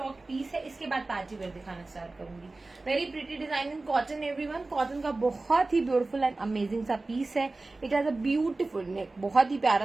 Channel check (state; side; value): quieter; left; 3.3 dB